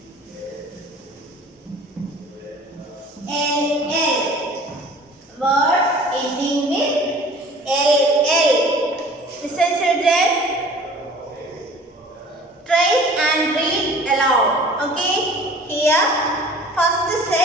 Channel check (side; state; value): both; normal; correlation 0.47